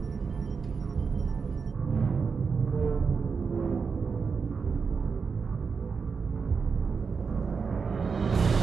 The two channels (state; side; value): quieter; left; 5.4 dB